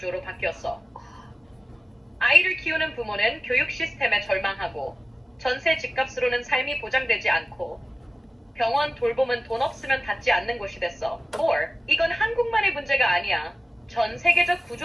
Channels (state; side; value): normal; both; correlation 0.96